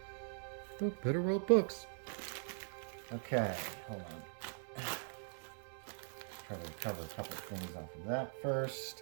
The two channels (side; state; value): left; silent; 50 dB below the other